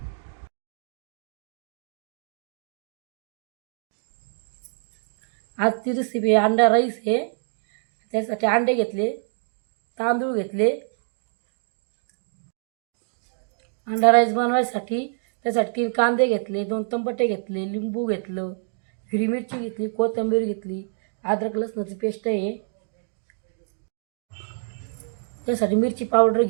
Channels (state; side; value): silent; left; digital silence